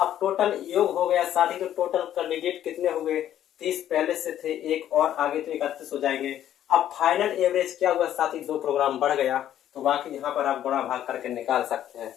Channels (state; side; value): quieter; right; 11.4 dB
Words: टोटल योग हो गया साथी, तो टोटल कैंडिडेट कितने हो गए, 30 पहले से थे, एक और आगे तो 31 हो जाएंगे। अब फाइनल एवरेज क्या हुआ साथी, 2 किलोग्राम बढ़ गया, तो बाकी यहाँ पर आप गुणा भाग करके निकाल सकते हैं।